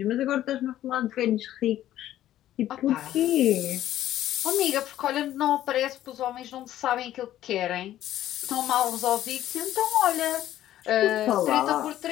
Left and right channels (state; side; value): quieter; right; 12.9 dB